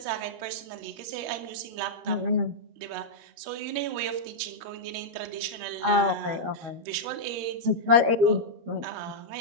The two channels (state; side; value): late; left; 13 ms